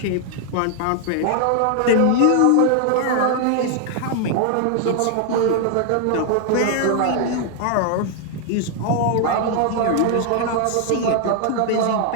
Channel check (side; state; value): both; different; correlation 0.00